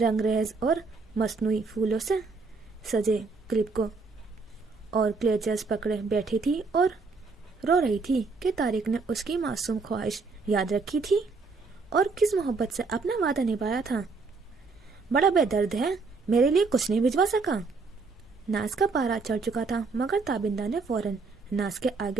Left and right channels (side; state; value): left; quieter; 4.3 dB